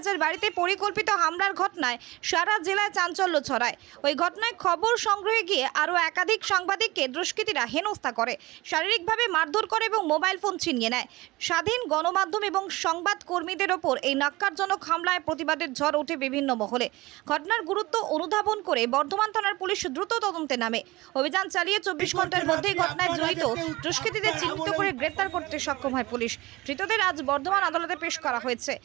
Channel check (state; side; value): quieter; left; 20.4 dB